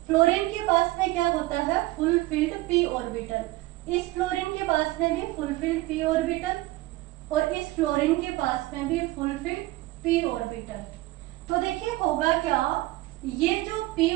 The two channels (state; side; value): quieter; left; 19.1 dB